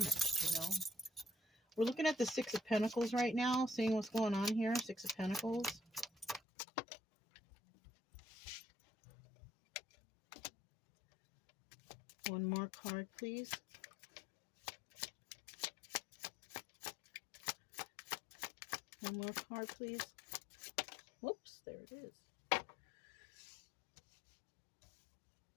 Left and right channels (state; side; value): drops out; right; at 6.4 s